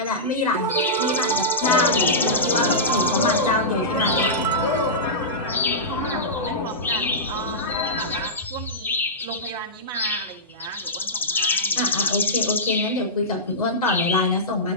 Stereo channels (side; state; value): both; normal; correlation -0.14